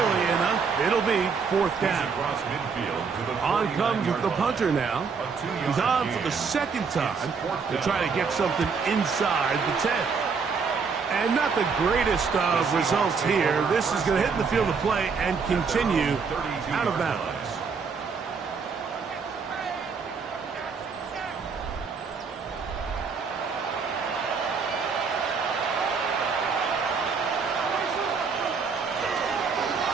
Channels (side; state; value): left; quieter; 5.4 dB